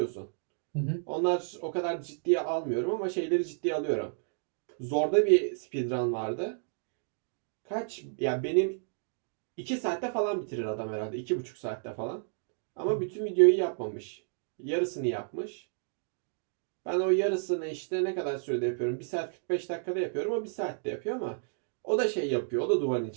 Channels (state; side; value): silent; left; digital silence